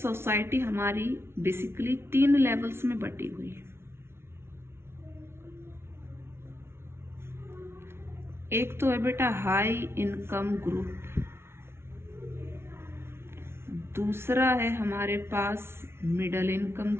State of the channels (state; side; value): late; left; 0.12 ms